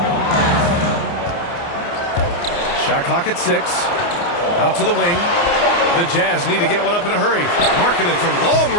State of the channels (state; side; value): late; right; 29 ms